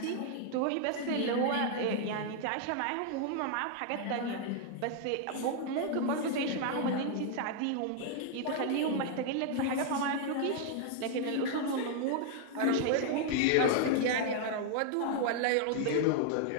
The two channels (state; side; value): different; both; correlation 0.00